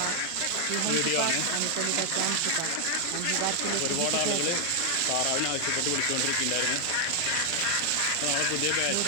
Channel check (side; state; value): both; different; correlation 0.00